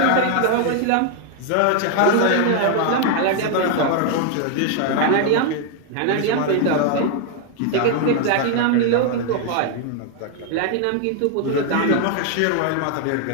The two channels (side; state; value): both; different; correlation 0.00